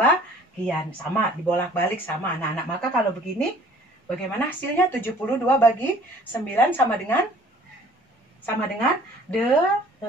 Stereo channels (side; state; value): both; normal; correlation 0.54